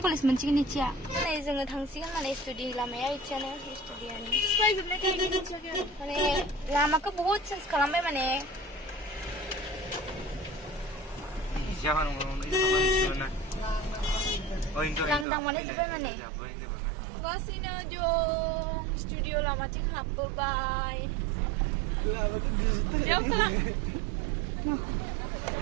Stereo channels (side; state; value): left; drops out; at 15.2 s